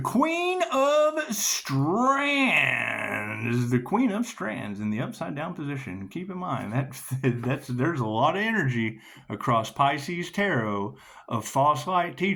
Queen of Strands. The Queen of Strands in the upside down position. Keep in mind there's a lot of energy across Pisces tarot of false light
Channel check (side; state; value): both; identical; correlation 1.00